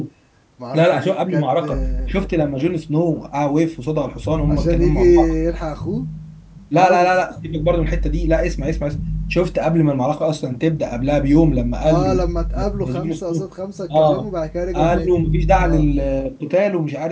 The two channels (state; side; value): identical; both; correlation 1.00